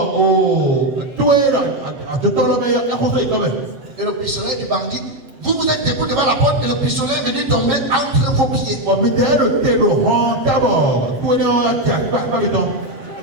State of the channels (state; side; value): late; left; 7.9 ms